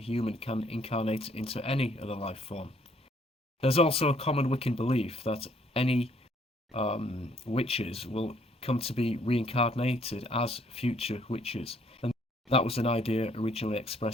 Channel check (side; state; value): both; normal; correlation 0.65